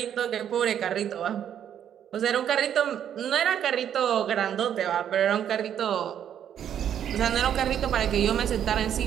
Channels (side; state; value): left; quieter; 9.6 dB